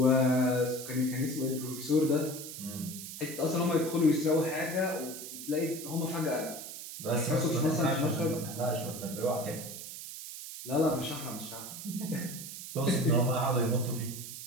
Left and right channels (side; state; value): right; noise; hiss, 10 dB below the sound